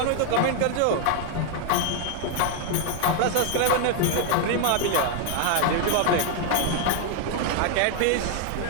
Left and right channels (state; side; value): different; both; correlation 0.00